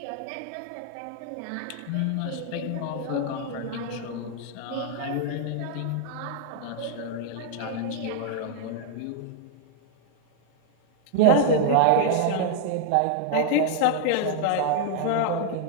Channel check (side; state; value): both; different; correlation 0.00